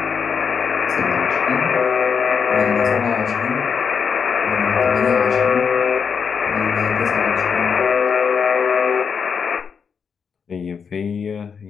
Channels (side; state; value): right; quieter; 6.4 dB